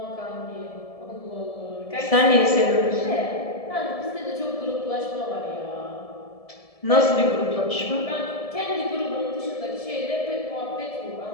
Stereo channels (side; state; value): right; late; 1.7 ms